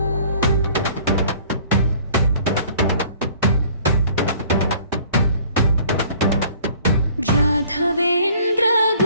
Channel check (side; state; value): both; inverted; correlation -0.53